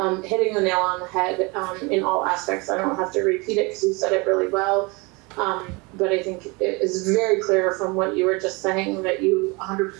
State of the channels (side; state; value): left; quieter; 27.3 dB